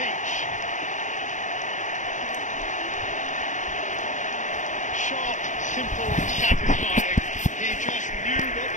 Sharp, simple, satisfying. He just knew what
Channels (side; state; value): right; late; 0.36 ms